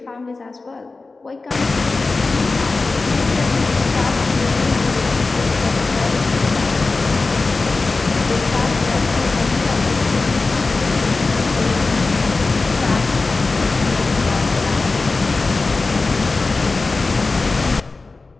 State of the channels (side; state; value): right; quieter; 3.7 dB